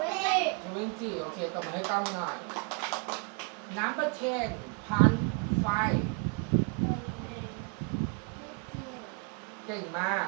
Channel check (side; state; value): left; quieter; 36.4 dB